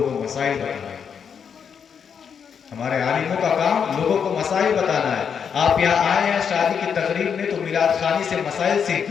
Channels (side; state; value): right; quieter; 7.1 dB